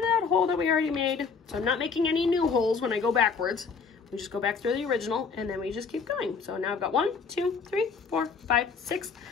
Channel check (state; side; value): quieter; right; 5.3 dB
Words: that hole that we already made. So I'm not making any new holes when I go backwards. We just go back through the original and then we just keep going. So now I've got 1, 2, 3, 4, 5, 6.